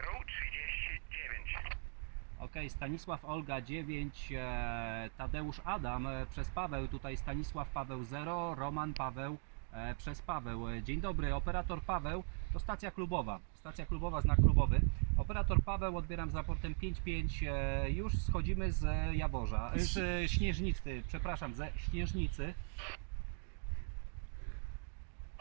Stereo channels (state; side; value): silent; left; 51 dB below the other